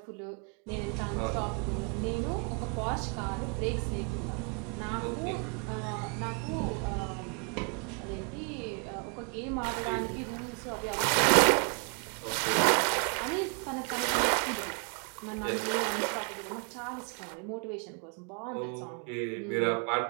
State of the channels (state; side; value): quieter; left; 36.3 dB